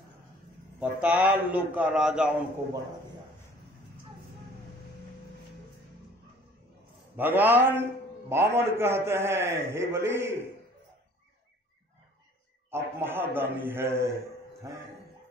पताल लोक का राजा उनको बना दिया। भगवान वामन कहते हैं हे बलि आप महादानी हैं।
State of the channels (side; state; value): both; normal; correlation 0.53